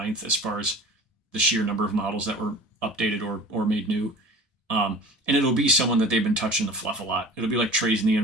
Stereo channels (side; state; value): both; normal; correlation 0.41